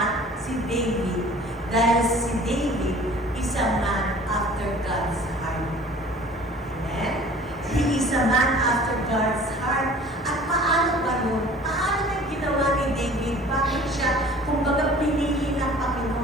si David dahil si David is a man after God's heart. Amen? He is a man after God's heart. At paano ba yun? Paano na ginawa ni David? Bakit siya, kumbaga, pinili ng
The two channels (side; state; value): both; normal; correlation 0.47